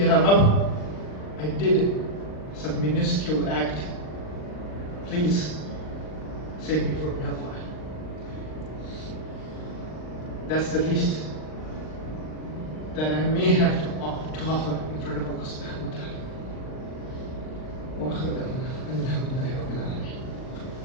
Rabb, I did some minuscule act. Please save me from hellfire. That's the least that I may have to offer in front of Allah subhanahu wa ta'ala. Wa akhiru da'wana alhamdulillahi rabbil alamin.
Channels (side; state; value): right; late; 39 ms